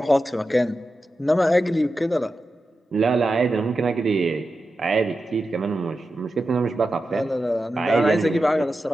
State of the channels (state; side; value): normal; both; correlation 0.91